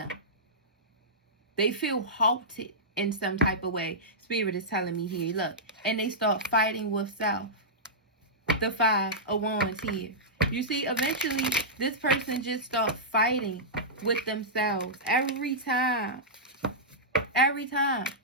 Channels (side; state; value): both; normal; correlation -0.13